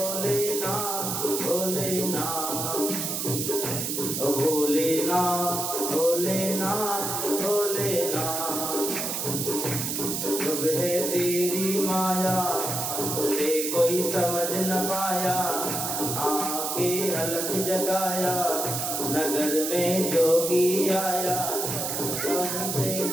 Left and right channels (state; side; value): noise; right; hiss, 2 dB below the sound